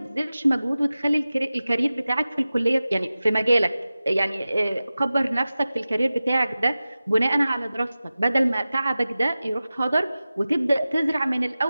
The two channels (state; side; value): inverted; both; correlation -0.96